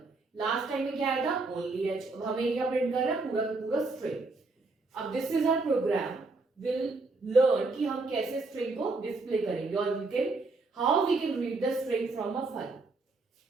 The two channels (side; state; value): left; quieter; 3.6 dB